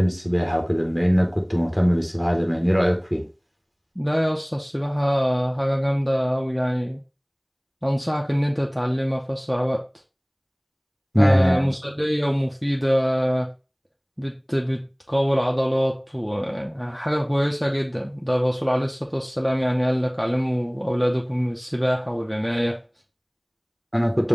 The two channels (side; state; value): both; identical; correlation 1.00